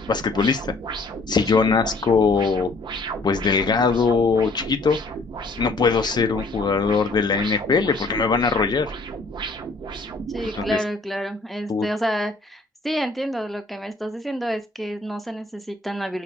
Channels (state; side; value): quieter; right; 3.5 dB